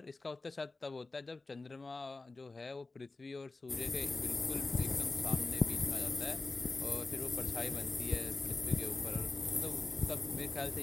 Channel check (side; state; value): right; quieter; 3.5 dB